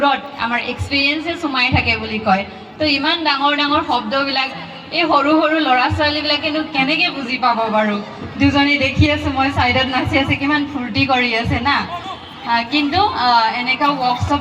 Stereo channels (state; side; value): identical; both; correlation 1.00